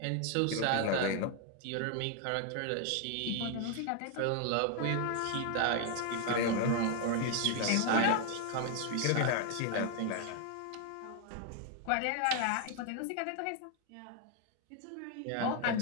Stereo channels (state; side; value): different; both; correlation 0.00